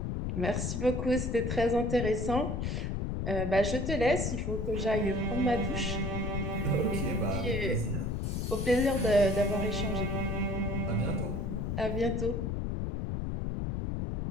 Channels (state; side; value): noise; left; rumble, 1 dB below the sound